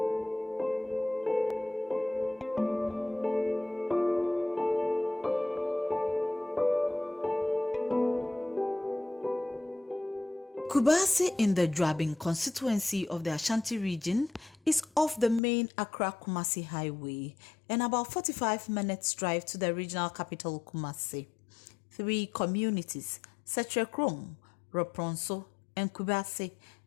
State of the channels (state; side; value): drops out; right; at 15.4 s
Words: in the Drabin constituency of the Ashanti region is off the main Accra-Kumasi highway and about 45 minutes drive to the regional capital Kumasi. 3 communities, Setrekrom, Ropronso, and Kubasi,